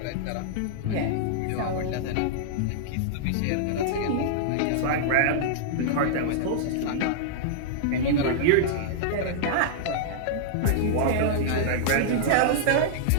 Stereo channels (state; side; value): different; both; correlation -0.02